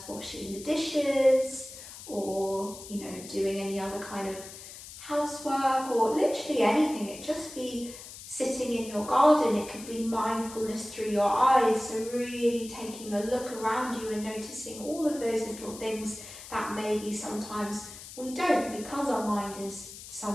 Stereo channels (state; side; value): noise; left; hiss, 14 dB below the sound